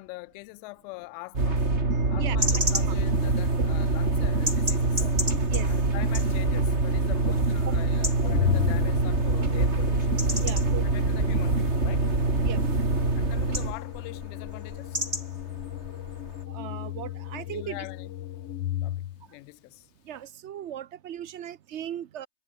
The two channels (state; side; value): late; left; 3.3 ms